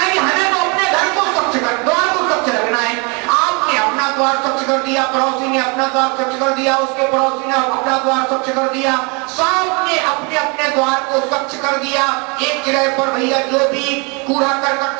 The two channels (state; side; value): quieter; left; 31.0 dB